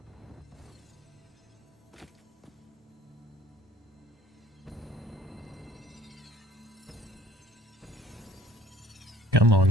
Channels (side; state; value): both; normal; correlation 0.55